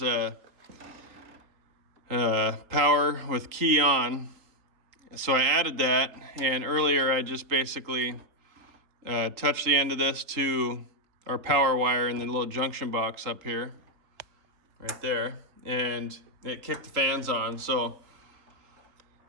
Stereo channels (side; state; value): left; late; 3.8 ms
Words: power with key on. So I added that, and earlier I just basically touched the end of this to our power wire in the little junction box up here, right there, and it kicked the fans on. So